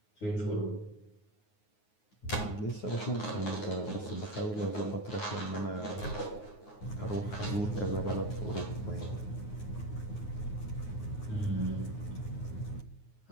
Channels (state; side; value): late; right; 9.5 ms